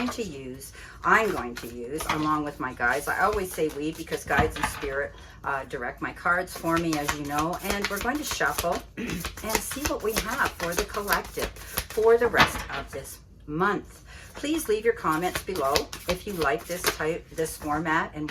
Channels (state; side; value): identical; both; correlation 1.00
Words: to use. I'm going to use along with my guides. I always say we because guides and spirit direct my cards for me, as you know. And we're going to shuffle and see what we have for the collective for the rest of this month. Please leave your comments below if you like this format and